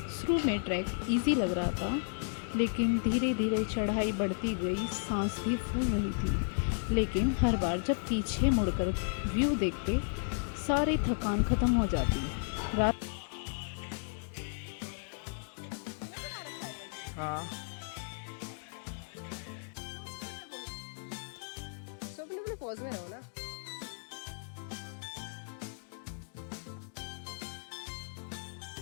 शुरू में ट्रैक इजी लग रहा था, लेकिन धीरे धीरे चढ़ाई बढ़ती गई, सांस भी फूल रही थी। लेकिन हर बार जब पीछे मुड़कर व्यू देखते सारी थकान ख़त्म हो जाती। रात हाँ So अपने pose में रहो ना.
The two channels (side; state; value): right; silent; digital silence